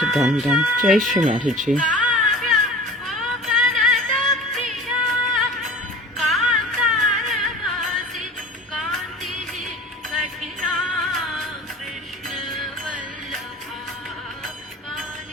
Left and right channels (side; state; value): both; normal; correlation 0.40